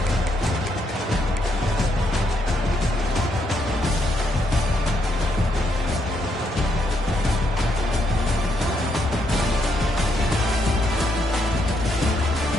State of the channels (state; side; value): normal; both; correlation 0.76